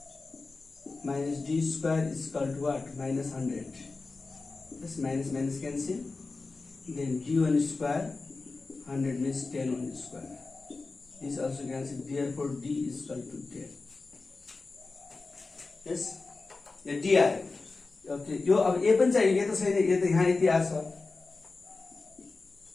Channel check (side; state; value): right; quieter; 3.8 dB